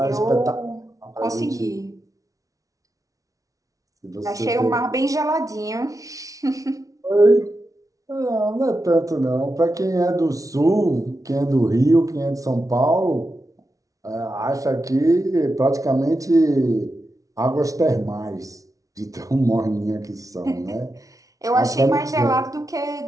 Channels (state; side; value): late; left; 0.17 ms